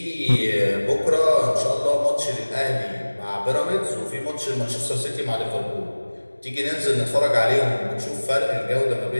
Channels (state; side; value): inverted; both; correlation -1.00